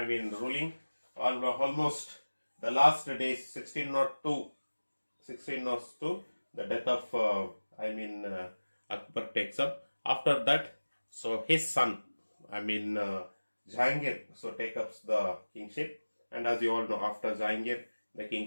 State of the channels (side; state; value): both; inverted; correlation -1.00